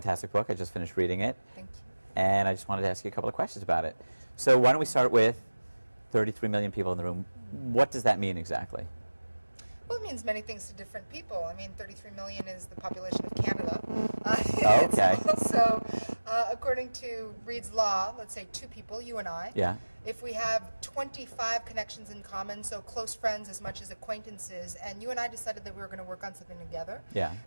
book. I just finished reading it. Thank you. And I just wanted to ask you a couple of questions about it. So why don't we start with 33 million people in the room. What does that mean exactly? Well, it means many things to different people. I mean, 33 million is the population of Canada. Okay. Also, according to Reed's law, let's say two people, you and I. Yeah. If we have 25 connections in common, so close friends as much as acquaintances, and you and I decided that we were going to work on something together, yeah,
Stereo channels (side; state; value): both; inverted; correlation -1.00